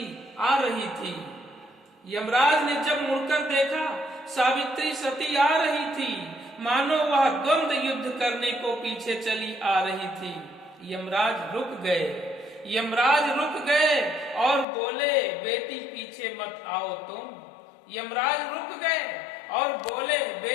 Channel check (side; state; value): right; drops out; at 14.7 s